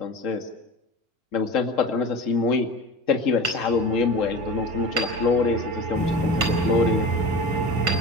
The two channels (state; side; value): normal; both; correlation 0.32